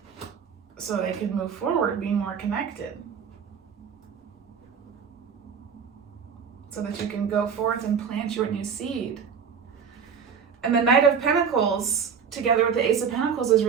so they can move forward, being more connected. So that you can go forth and plant your new seed. And the Knight of Pentacles together with the Ace of Pentacles is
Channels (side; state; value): left; quieter; 6.7 dB